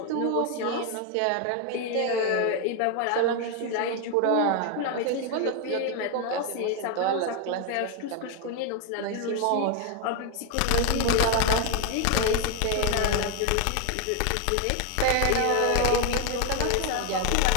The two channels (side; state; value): both; different; correlation 0.01